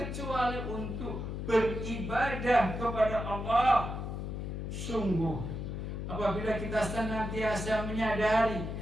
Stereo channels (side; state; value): left; noise; hum, 5 dB below the sound